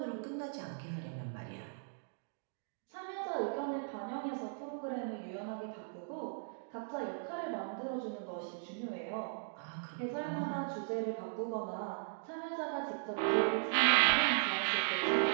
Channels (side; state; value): left; silent; digital silence